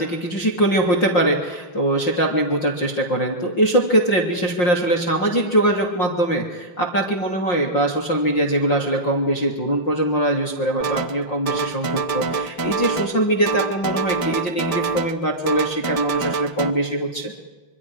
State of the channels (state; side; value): late; right; 5.6 ms